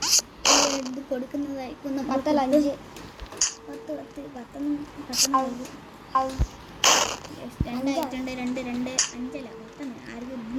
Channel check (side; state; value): both; identical; correlation 1.00